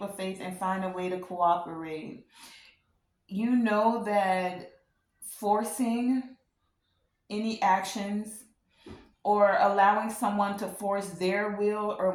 of faith and find a way to cooperate. You know that forcing any actions or allowing someone to force their will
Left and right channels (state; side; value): identical; both; correlation 1.00